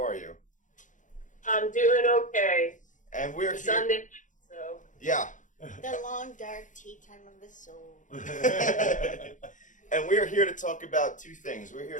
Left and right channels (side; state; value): right; late; 0.37 ms